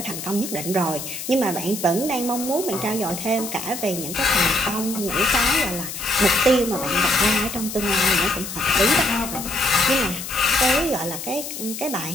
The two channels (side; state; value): left; noise; hiss, 8 dB below the sound